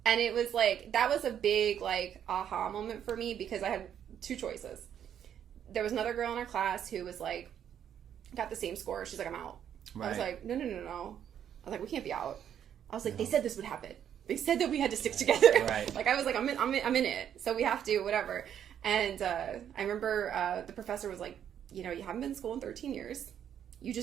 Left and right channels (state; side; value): quieter; left; 9.4 dB